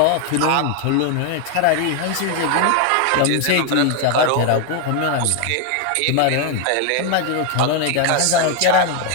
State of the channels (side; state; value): both; different; correlation 0.01